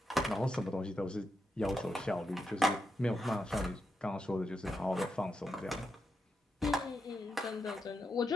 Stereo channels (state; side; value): normal; both; correlation 0.85